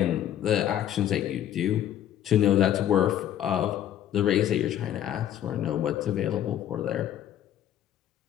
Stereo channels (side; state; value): right; quieter; 11.1 dB